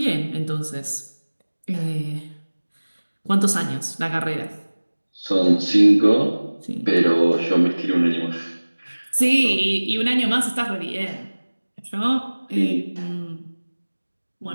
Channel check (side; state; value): both; inverted; correlation -1.00